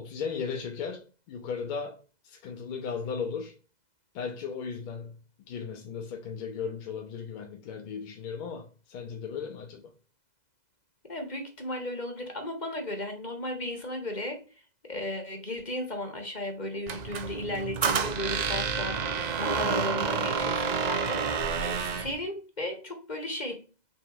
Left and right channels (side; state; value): right; late; 1.9 ms